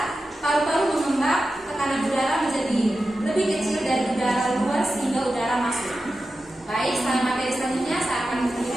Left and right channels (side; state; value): both; normal; correlation 0.92